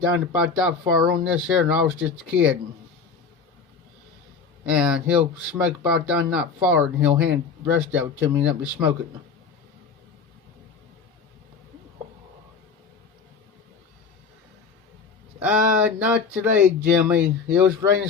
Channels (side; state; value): right; quieter; 5.3 dB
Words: down to about that far on this here, and I was just a kid. And he'll smoke about down that far, and he'll hand the rest of it to me and let me smoke it. Not today, Jimmy. It was raining